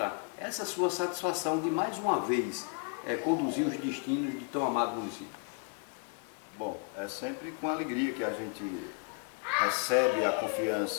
essa sua satisfação de mais uma vez conduzir os destinos de tão amado município? Bom, é sempre com alegria que a gente recebe a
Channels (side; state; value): right; quieter; 37.0 dB